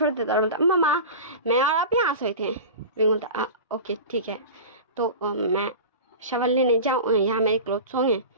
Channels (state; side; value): inverted; both; correlation -0.31